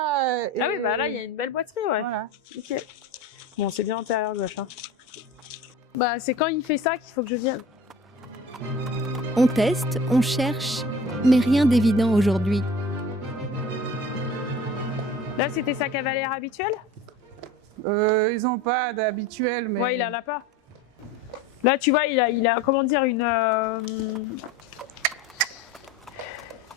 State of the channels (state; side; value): normal; both; correlation 0.38